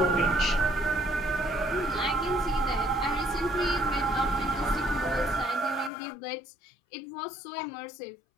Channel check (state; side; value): drops out; right; at 5.9 s